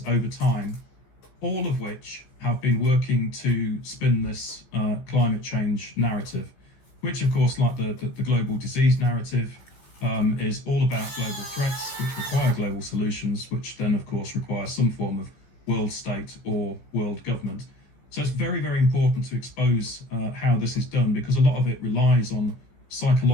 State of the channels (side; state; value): right; late; 15 ms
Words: over time, all of which have been working to spin this climate change narrative, which, of course, like the global disease narrative, is all about global threats, which require global solutions, which then, of course, require some form of world state or world government. So it's very, very important to expose how this is done, because a lot of it relies on